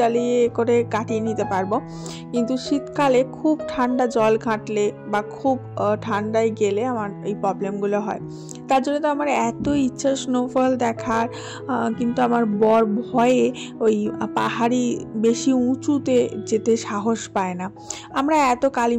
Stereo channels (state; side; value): identical; both; correlation 1.00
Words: করে কাটিয়ে নিতে পারবো। কিন্তু শীতকালে খুব ঠান্ডা জল ঘাঁটলে বা খুব ঠান্ডায় গেলে আমার এই প্রবলেমগুলো হয়। তার জন্য তো আমার এত ইচ্ছা স্নোফল দেখার, কিন্তু আমার বর ভয়ে ওই পাহাড়ি বেশি উঁচুতে যেতে সাহস পায় না। আমরা এত